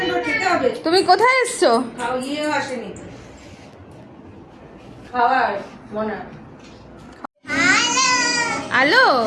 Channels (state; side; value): identical; both; correlation 1.00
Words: তুমি কোথায় এসছো? হ্যালো,